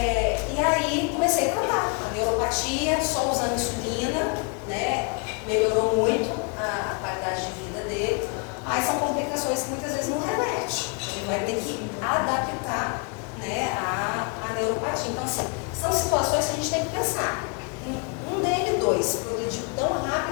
aí comecei a tratar a neuropatia, só usando insulina, né? Melhorou muito a qualidade de vida dele, mas são complicações que muitas vezes não reverte. Ele vai ter que adaptar, né, a neuropatia. Então, assim, são situações que a gente tem que pensar. Um DN2 progrediu tão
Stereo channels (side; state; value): right; quieter; 37.3 dB